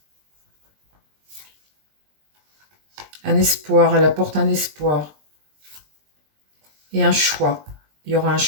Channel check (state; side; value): late; left; 20 ms